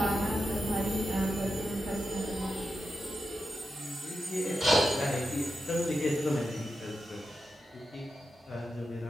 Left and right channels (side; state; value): both; normal; correlation 0.88